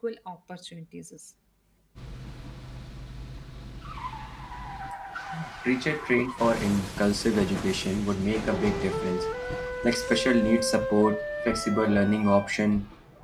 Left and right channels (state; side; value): identical; both; correlation 1.00